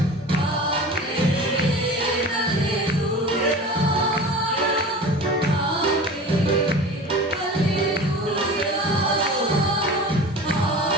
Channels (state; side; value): normal; both; correlation 0.36